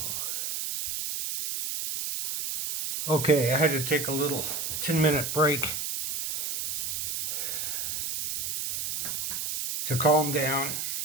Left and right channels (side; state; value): right; noise; hiss, 2 dB below the sound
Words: Okay, I had to take a little 10-minute break to calm down.